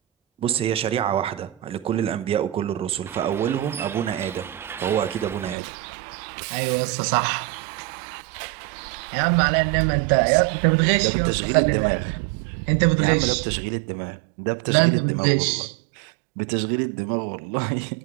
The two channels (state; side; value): drops out; left; at 5.6 s